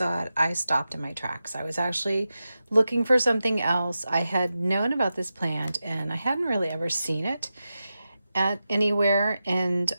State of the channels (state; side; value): inverted; both; correlation -0.91